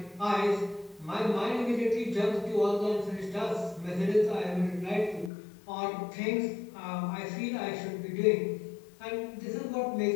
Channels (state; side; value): drops out; right; at 5.3 s